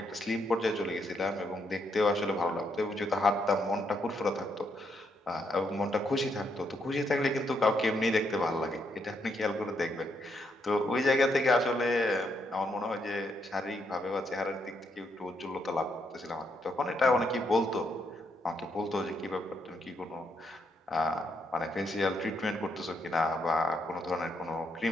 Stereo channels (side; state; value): both; normal; correlation 0.77